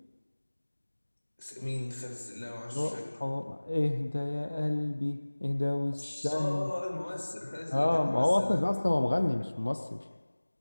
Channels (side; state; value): both; inverted; correlation -1.00